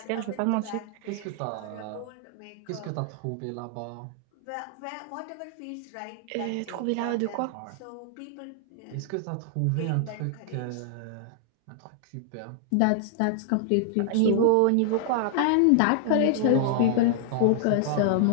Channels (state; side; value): different; both; correlation 0.00